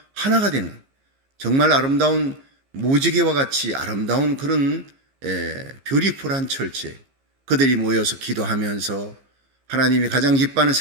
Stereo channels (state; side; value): late; left; 15 ms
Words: 하나가 되는 정말 아름다운 무지개와 같이 아름다운 그런 뷰티풀한 철제. 그들이 모여서 기도하면서 하나님이 가장 기뻐하는